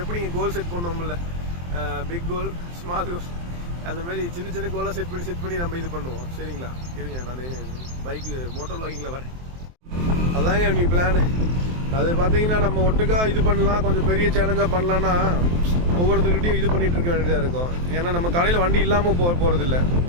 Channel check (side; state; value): left; late; 23 ms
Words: எப்படிங்க கோல் செட் பண்ணோம்ல, பிக் கோல், ஸ்மால் கோல், அந்த மாதிரி சின்ன சின்ன கோலாக செட் பண்ணி நம்ம இது பண்ணுவோம். சரிங்களா? இருங்க, நான் பைக்கு மோட்டர் வ்ளாகிங்கில் வரேன். அதாங்க நீ பிளான். அது பார்த்தீங்கன்னா நம்ம ஒட்டுக்கா இது பண்ணலாம், கொஞ்சம் பெரிய சேலஞ்சாக பண்ணலான்னா ஒவ்வொருத்தருக்கிட்டையும் இது பண்ணிகிட்டு இருக்க வேண்டியதாக இருக்கும். ஏன்னா நம்ம கடையில் வண்டி இல்லாமல் போகிறதில்ல.